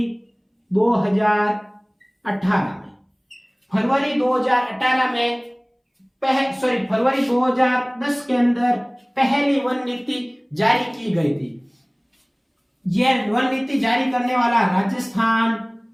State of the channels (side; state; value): both; identical; correlation 1.00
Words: 2018 में। फरवरी 2010 के अंदर पहली वन नीति जारी की गई थी। यह वन नीति जारी करने वाला